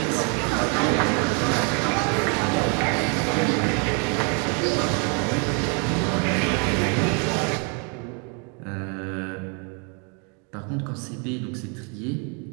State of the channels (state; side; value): quieter; left; 36.4 dB